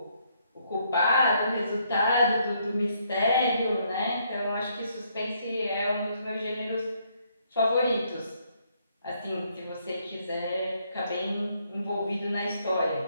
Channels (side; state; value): both; inverted; correlation -0.71